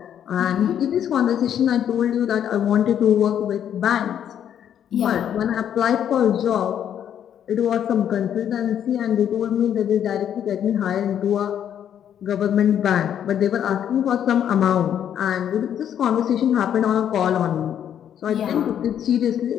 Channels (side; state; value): right; quieter; 9.5 dB